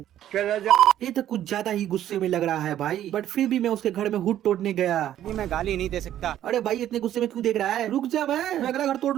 ये तो कुछ ज्यादा ही गुस्से में लग रहा है भाई। बट फिर भी मैं उसके घर में हुड तोड़ने गया। मैं गाली नहीं दे सकता। अरे भाई इतने गुस्से में क्यों देख रहा है? रुक जा, मैं अगला घर तोड़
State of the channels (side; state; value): left; quieter; 11.8 dB